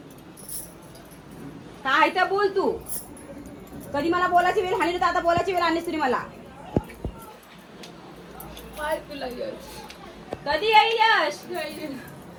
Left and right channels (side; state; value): both; identical; correlation 1.00